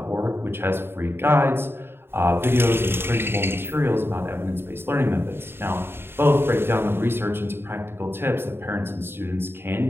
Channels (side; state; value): left; late; 0.11 ms